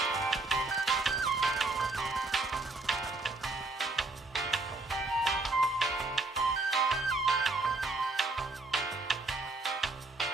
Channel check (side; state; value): left; quieter; 3.2 dB